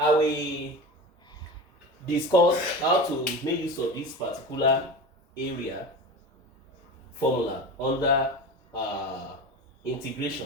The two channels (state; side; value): normal; both; correlation 0.29